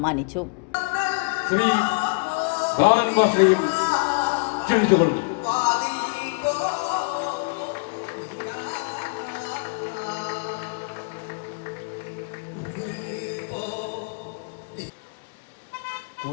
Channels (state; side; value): quieter; right; 35.1 dB